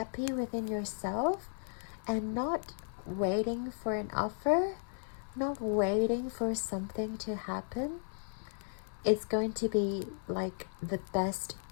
within yourself and not waiting for an offer, not waiting for something to happen, it's going to be like the best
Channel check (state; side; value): silent; right; 54 dB below the other